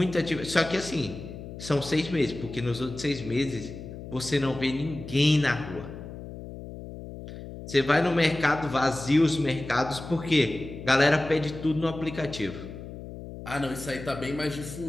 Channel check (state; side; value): noise; left; hum, 12 dB below the sound